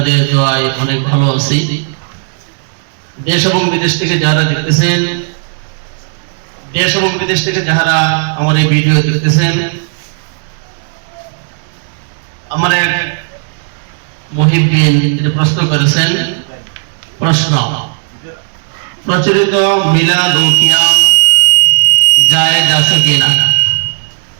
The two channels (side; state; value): left; silent; digital silence